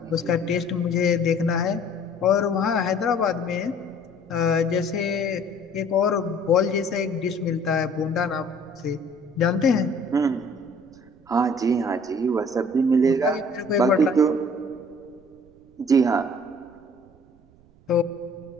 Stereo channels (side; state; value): right; noise; rumble, 28 dB below the sound